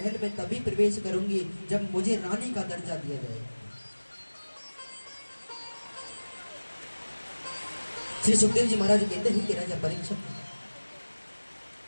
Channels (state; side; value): inverted; both; correlation -1.00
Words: में तभी प्रवेश करूंगी जब मुझे रानी का दर्जा दिया जाएगा। श्री सुखदेव जी महाराज कहते हैं कि राजा परीक्षित